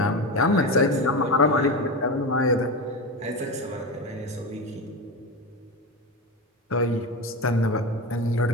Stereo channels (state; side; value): normal; both; correlation 0.20